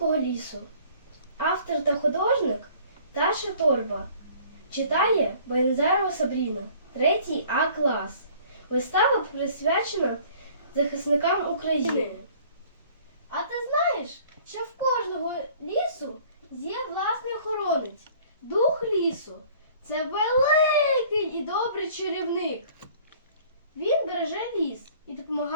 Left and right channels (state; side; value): inverted; both; correlation -0.53